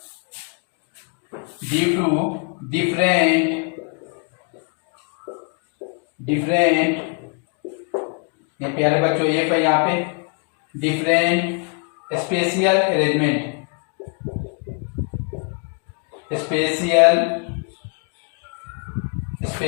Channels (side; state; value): right; quieter; 37.6 dB